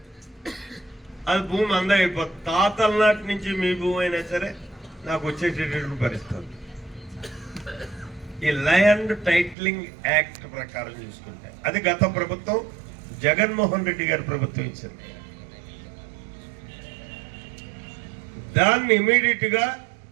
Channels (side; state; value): left; drops out; at 9.6 s